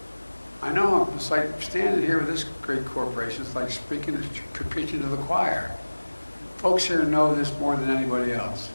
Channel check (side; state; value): both; inverted; correlation -1.00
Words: I know it's like standing here with this great corporation, it's like preaching to the choir. Folks here know this more than anybody else.